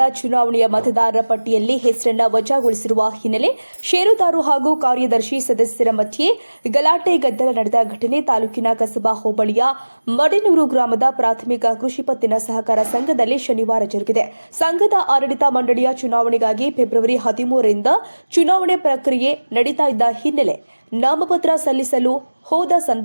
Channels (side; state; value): both; inverted; correlation -1.00